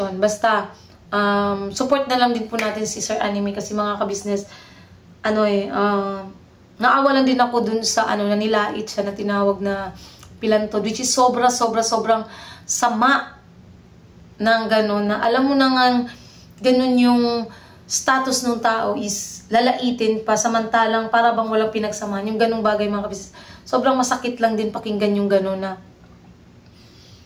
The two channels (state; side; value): identical; both; correlation 1.00